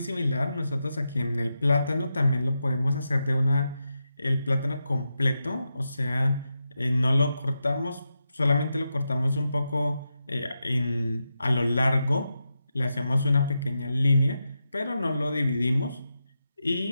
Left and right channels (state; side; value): inverted; both; correlation -0.87